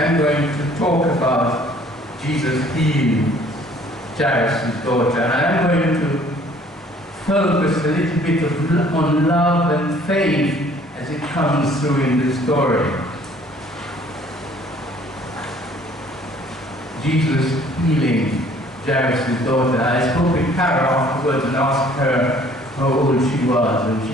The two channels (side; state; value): both; normal; correlation 0.56